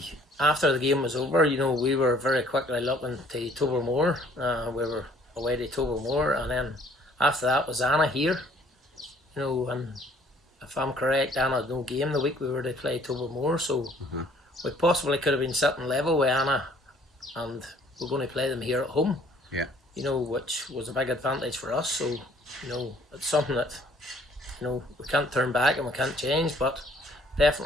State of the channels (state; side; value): normal; both; correlation 0.59